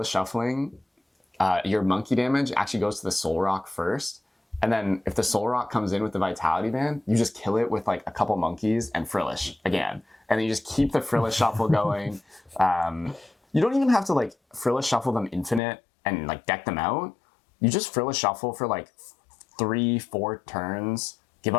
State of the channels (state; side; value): drops out; right; at 15.6 s